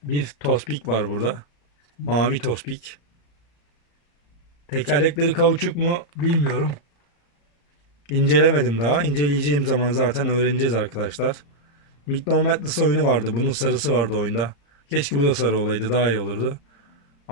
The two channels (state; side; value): late; right; 35 ms